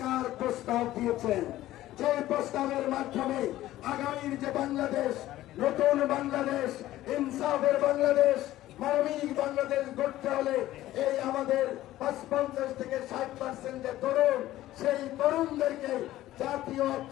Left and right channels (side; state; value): right; quieter; 14.9 dB